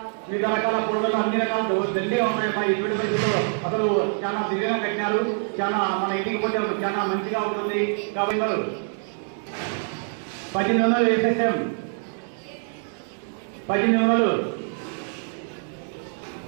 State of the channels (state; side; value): silent; left; 58 dB below the other